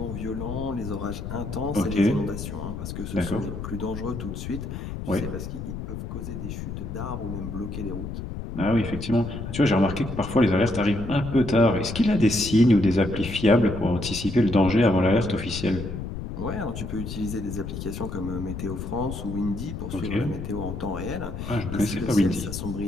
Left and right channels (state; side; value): noise; left; rumble, 7 dB below the sound